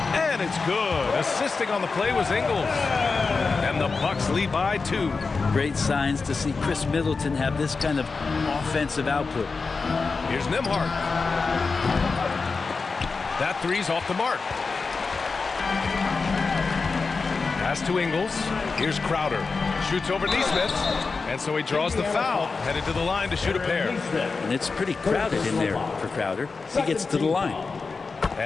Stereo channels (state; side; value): quieter; right; 4.4 dB